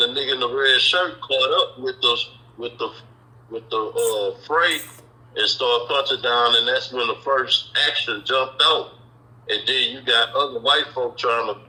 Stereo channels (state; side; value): identical; both; correlation 1.00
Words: nigga in the red shirt caught up with the freight and started punching down, and that's when the first action jumped out. And then you got other white folk trying to,